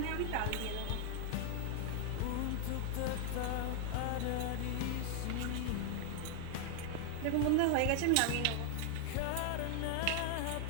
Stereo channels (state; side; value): different; both; correlation 0.00